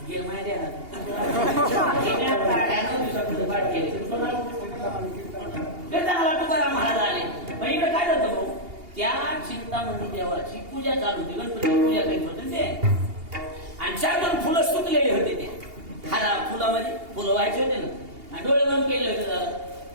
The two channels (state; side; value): late; left; 2.8 ms